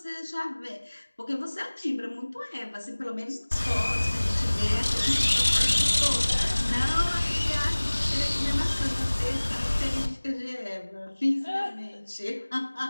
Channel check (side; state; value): both; inverted; correlation -1.00